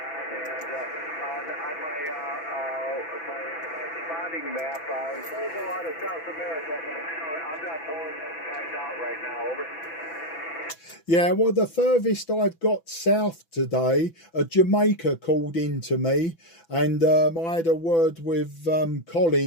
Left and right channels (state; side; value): late; right; 6.0 ms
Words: and on my spotting map, it shows a lot of South America, but I'm not pulling those guys out right now. Over. Yeah, well, the furthest I've got south today, Jamaica called in to me, and I had a word with